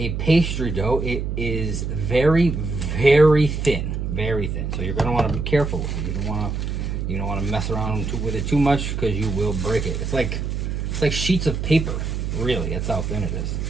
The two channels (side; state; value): right; noise; hum, 3 dB below the sound